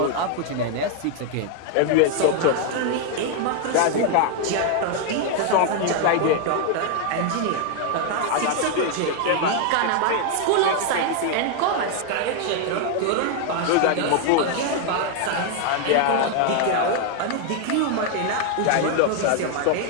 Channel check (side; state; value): both; different; correlation 0.00